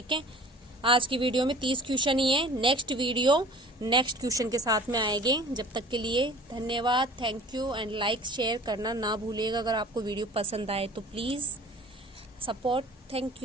है। आज की वीडियो में 30 क्वेश्चन ही है। नेक्स्ट वीडियो नेक्स्ट क्वेश्चन के साथ में आएंगे। जब तक के लिए धन्यवाद। थैंक यू एंड लाइक शेयर करना ना भूलिएगा। अगर आपको वीडियो पसंद आए तो प्लीज़ सपोर्ट। थैंक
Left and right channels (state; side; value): normal; both; correlation 0.46